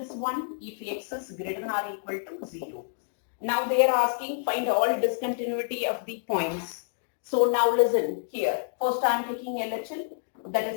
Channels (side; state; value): right; silent; digital silence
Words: 1 if x is greater than or equal to 0. Now they are asking find all discontinuity of the points. So now listen here. First I am taking LHL, that